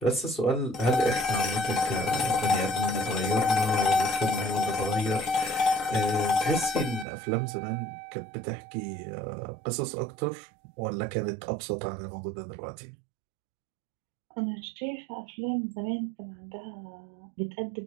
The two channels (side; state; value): left; drops out; at 7.1 s